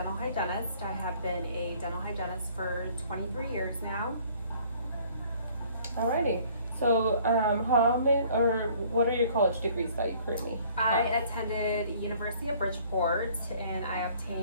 hygienist. I have been a dental hygienist for 23 years now. Alrighty. So, how many, or what are your college degrees that you currently I have? attended University of Bridgeport and I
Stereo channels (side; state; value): both; inverted; correlation -0.57